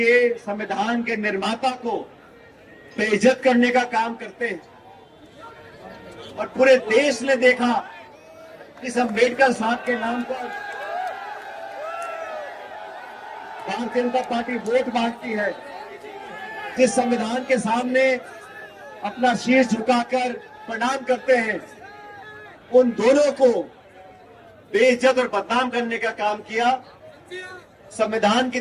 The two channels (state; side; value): identical; both; correlation 1.00